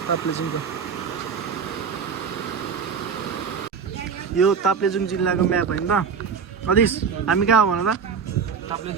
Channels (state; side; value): quieter; left; 6.3 dB